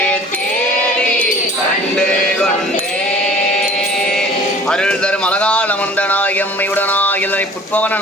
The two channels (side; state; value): both; normal; correlation 0.47